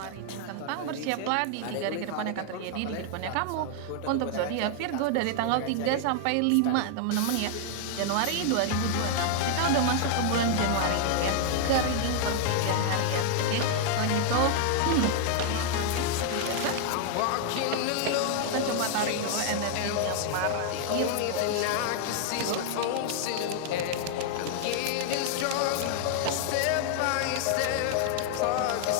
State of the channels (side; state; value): both; different; correlation 0.00